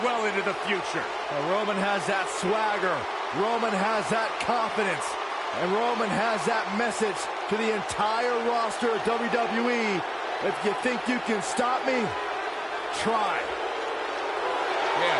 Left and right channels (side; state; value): both; identical; correlation 1.00